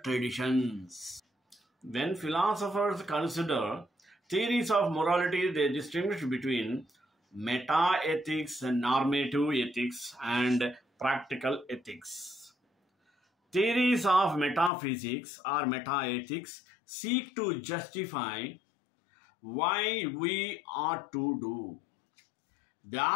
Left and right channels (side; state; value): right; drops out; at 14.7 s